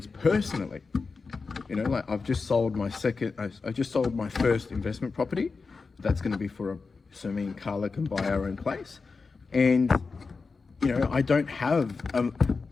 personally. Like, I've just sold my first investment property. That's going to be so me and Carla can buy our own place. And, I don't have a,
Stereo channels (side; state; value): right; quieter; 4.5 dB